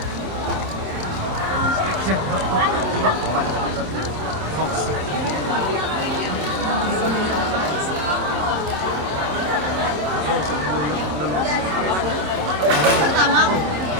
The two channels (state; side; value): late; left; 27 ms